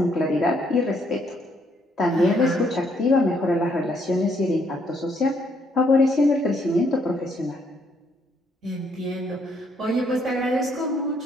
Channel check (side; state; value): both; normal; correlation 0.71